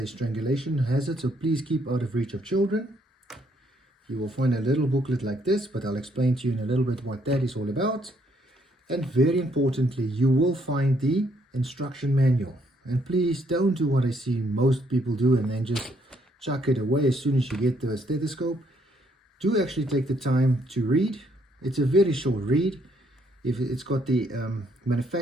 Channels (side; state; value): both; normal; correlation 0.70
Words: strangulation hazard, so please keep out of reach of children. You will find a little booklet like this, but I'll explain to you in a little bit what that is all about. And very importantly, you will find the instruction manual. And please don't do what I see most people do and then just chuck it away as soon as you get the stethoscope. Do actually take the time to read. It's a very short read. If it's got the